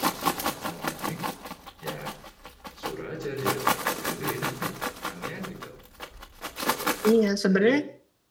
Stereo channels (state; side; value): identical; both; correlation 1.00